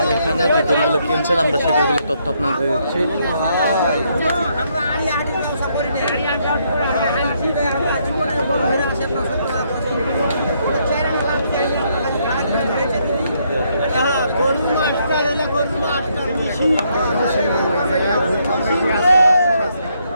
এখানে যে গরুগুলো কিনছেন, আমরা সে গরুগুলোর তথ্য আপনাদের দিচ্ছি।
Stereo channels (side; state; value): both; inverted; correlation -0.73